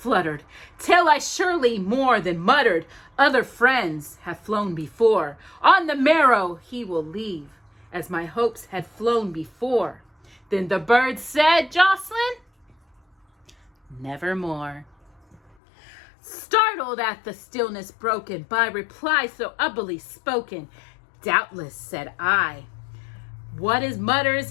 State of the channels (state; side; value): drops out; right; at 15.6 s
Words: till I surely more than muttered, other friends have flown before. On the marrow he will leave, as my hopes had flown before. Then the bird said, Jocelyn, nevermore. Startled at the stillness broken by reply so ubbly spoken, doubtless, said I, what is mutters,